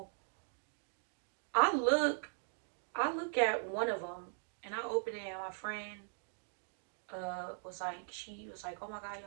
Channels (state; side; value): silent; left; digital silence